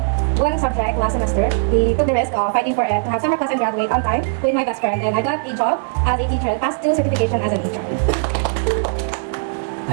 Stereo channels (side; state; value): left; silent; digital silence